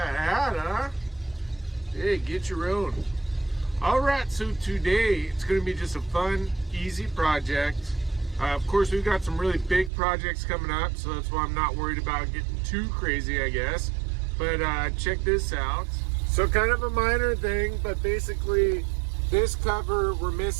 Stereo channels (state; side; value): drops out; left; at 9.9 s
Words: hat, huh? Hey, get your own. Alright, so today it's going to be just a fun, easy project. Of course, we've got some really big projects coming up, so that's why I'm not worried about getting too crazy, I guess. But check this out. So kind of a minor thing, but basically this cover, we're